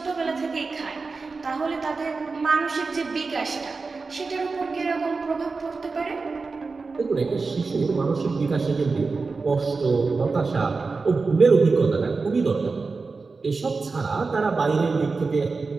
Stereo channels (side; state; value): left; quieter; 4.2 dB